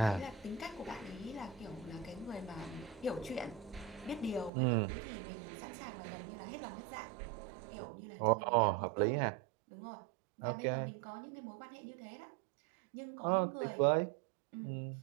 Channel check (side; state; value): left; drops out; at 4.5 s